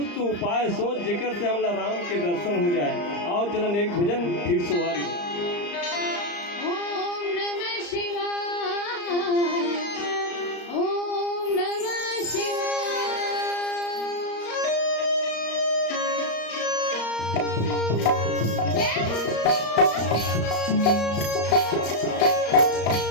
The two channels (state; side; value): late; right; 34 ms